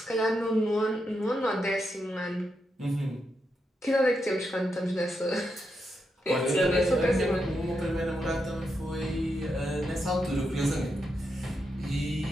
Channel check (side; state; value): both; normal; correlation 0.84